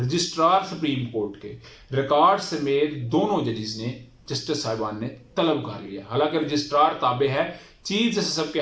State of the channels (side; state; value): both; identical; correlation 1.00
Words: सुप्रीम कोर्ट के रिकॉर्ड समेत दोनों जजेस ने, जस्टिस साहिबान ने तलब कर लिया। हालांकि रजिस्ट्रार ताबे है चीफ जस्टिस के